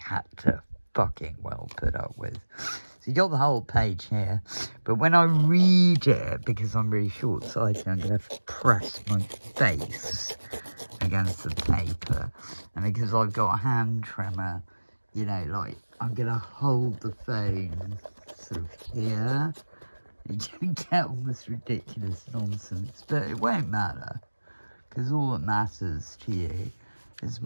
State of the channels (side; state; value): both; inverted; correlation -1.00